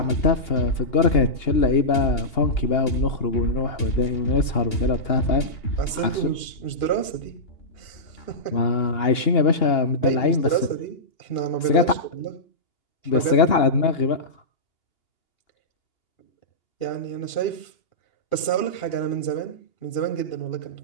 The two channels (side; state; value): right; late; 2.8 ms